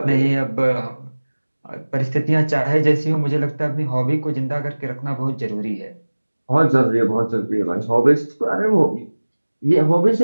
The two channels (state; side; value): inverted; both; correlation -1.00